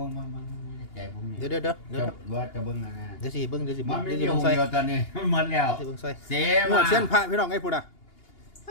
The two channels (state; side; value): late; right; 2.8 ms